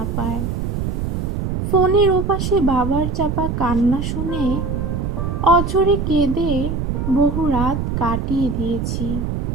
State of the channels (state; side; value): noise; right; rumble, 2 dB below the sound